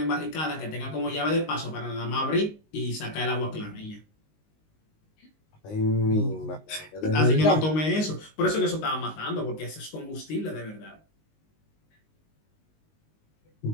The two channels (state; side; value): late; right; 19 ms